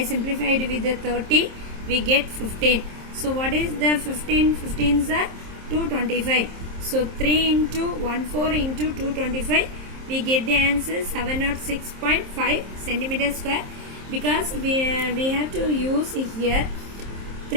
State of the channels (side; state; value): left; late; 27 ms